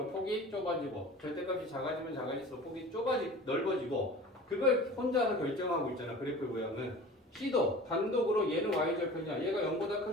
폭이 좁아지고 절대값이 작아지면 작아질수록 폭이 넓어지고 그걸 혼자서 결정하고 있잖아. 그래프의 모양은. C도 단독으로 얘는 y절편이야. 얘가 0보다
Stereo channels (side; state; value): both; normal; correlation 0.39